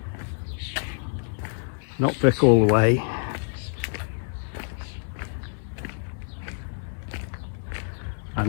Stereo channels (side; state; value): right; silent; 60 dB below the other